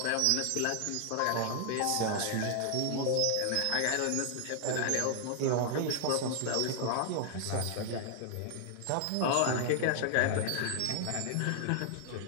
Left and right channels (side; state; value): both; different; correlation 0.00